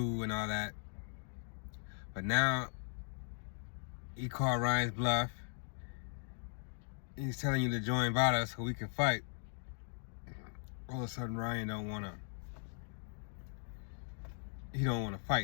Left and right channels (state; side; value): silent; right; 52 dB below the other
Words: and all that. But now he called Ryan's bluff. He's telling you to join Vada so we can fight. All of a sudden Ryan don't want to. He don't want to